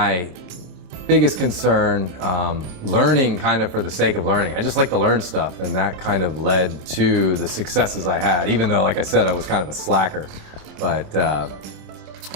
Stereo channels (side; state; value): left; late; 26 ms